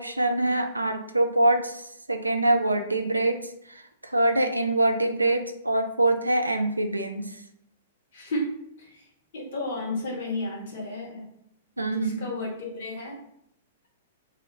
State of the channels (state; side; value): inverted; both; correlation -0.80